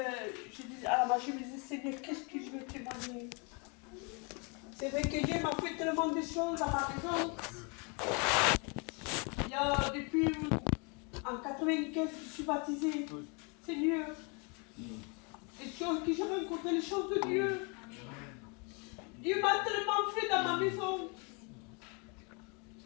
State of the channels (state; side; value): quieter; right; 33.3 dB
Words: je disais, à la base, je me disais, Seigneur, qu'est-ce que je vais témoigner? C'est vrai que Dieu m'a fait tellement de choses à ma maison. Il y a depuis en 95, je suis baptisée. Seigneur, les choses que j'ai rencontrées, les choses de Dieu. Dieu m'a tellement fait dans ma maison.